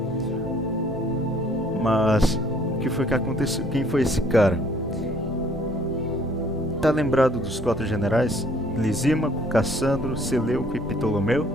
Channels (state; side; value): normal; both; correlation 0.60